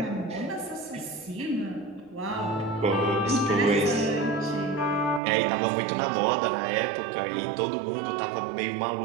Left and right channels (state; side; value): drops out; left; at 5.2 s